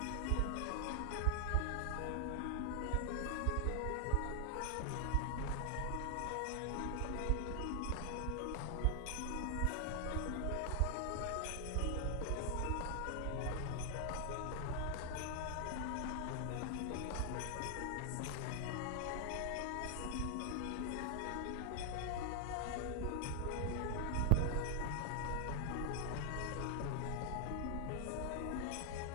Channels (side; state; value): both; different; correlation 0.00